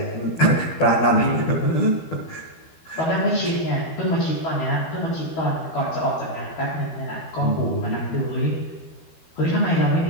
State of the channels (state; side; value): late; right; 12 ms